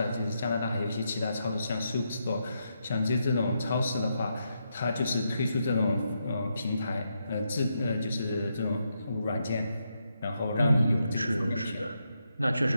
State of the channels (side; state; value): both; inverted; correlation -0.82